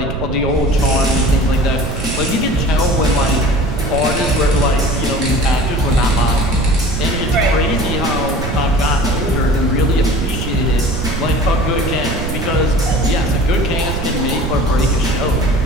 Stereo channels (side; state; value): right; noise; rumble, 5 dB below the sound